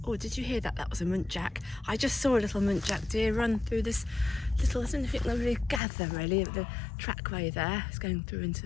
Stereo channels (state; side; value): drops out; right; at 5.8 s